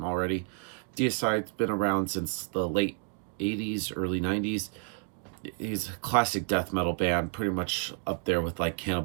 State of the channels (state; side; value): quieter; left; 33.2 dB